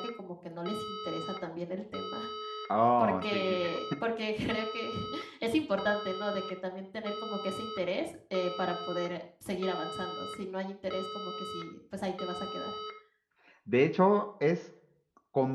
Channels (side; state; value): both; identical; correlation 1.00